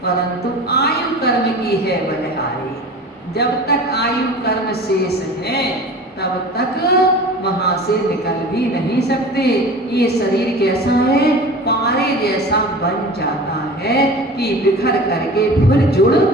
परंतु आयु कर्म की है बलिहारी। जब तक आयु कर्म शेष है तब तक वहां से निकल भी नहीं सकते। ये शरीर कैसा है, पारे जैसा बन जाता है कि बिखर करके फिर जुड़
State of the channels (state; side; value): normal; both; correlation 0.38